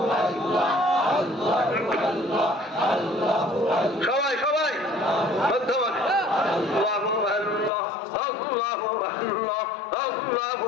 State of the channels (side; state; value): right; drops out; at 7.7 s